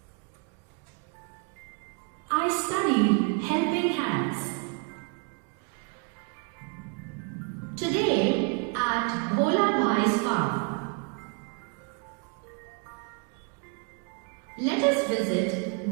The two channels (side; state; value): left; quieter; 36.9 dB